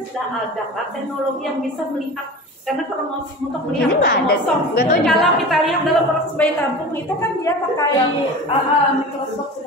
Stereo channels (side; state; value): both; normal; correlation 0.34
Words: sudah ada kan teknologi yang bisa melihat karena kromosom untuk melihat Ini nggak ada, kromosom. nggak tahu juga. Kalau kita lihat dalam proses bayi tabung itu kan dia pakai mikroskop